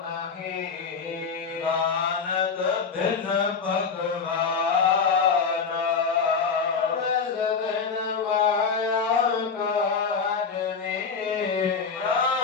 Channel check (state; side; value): quieter; right; 5.5 dB